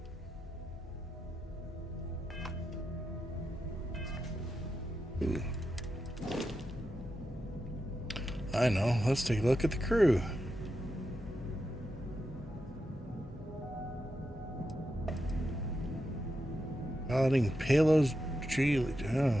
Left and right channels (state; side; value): normal; both; correlation 0.87